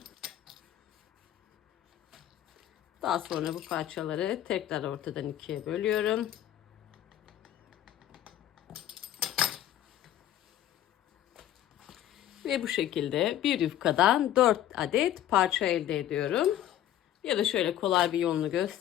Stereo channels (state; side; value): quieter; right; 11.9 dB